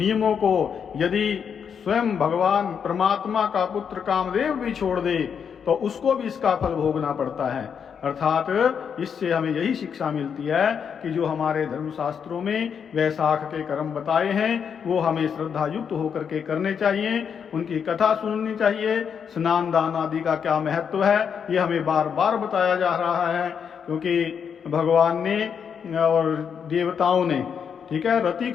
को यदि स्वयं भगवान परमात्मा का पुत्र कामदेव भी छोड़ दे तो उसको भी इसका फल भोगना पड़ता है। अर्थात इससे हमें यही शिक्षा मिलती है कि जो हमारे धर्मशास्त्रों में वैशाख के कर्म बताए हैं वो हमें श्रद्धा युक्त होकर के करने चाहिए, उनकी कथा सुननी चाहिए। स्नान दान आदि का क्या महत्व है ये हमें बार बार बताया जा रहा है, क्योंकि भगवान ने और देवताओं ने, ठीक है, रति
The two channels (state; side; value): quieter; right; 7.2 dB